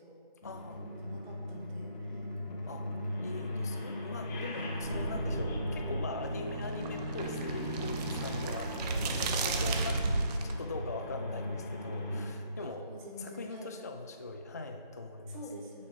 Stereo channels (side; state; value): both; inverted; correlation -0.65